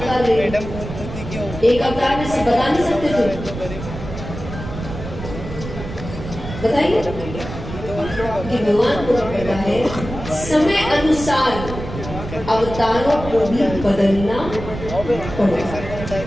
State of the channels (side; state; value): right; noise; rumble, 9 dB below the sound